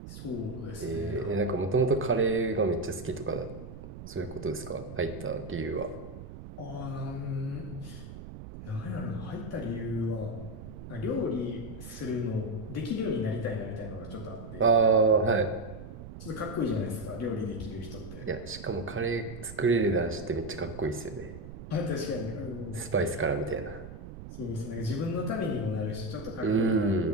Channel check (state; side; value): noise; right; rumble, 12 dB below the sound